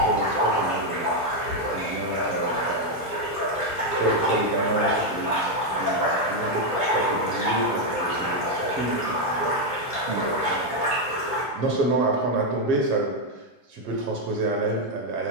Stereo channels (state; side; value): late; right; 1.3 ms